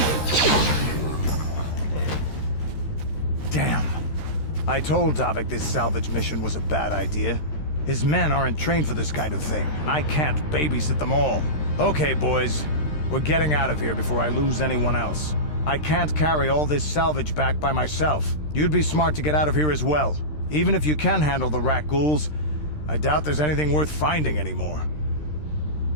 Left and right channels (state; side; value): late; right; 13 ms